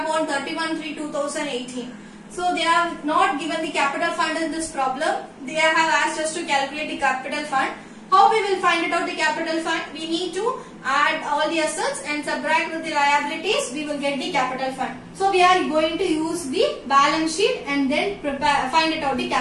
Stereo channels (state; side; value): identical; both; correlation 1.00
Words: on 31/3/2018. So they have not given the capital fund in this problem. They have asked us to calculate the capital fund. How we will find it out the capital fund? We need to add all the assets and subtract with the liabilities. We will get the capital fund. So we are going to use the balance sheet and then find it out the